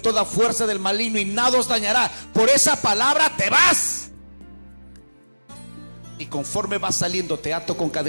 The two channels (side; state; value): both; inverted; correlation -1.00